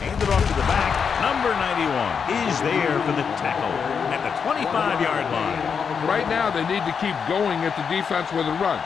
Hand it off to the back. Number 91 is there for the tackle at the 25-yard line. Right now, they need to keep going at the defense with a run.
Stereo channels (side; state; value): right; quieter; 6.4 dB